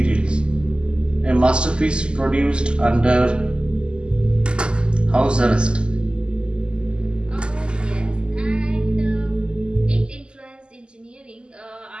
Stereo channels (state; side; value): late; left; 0.050 ms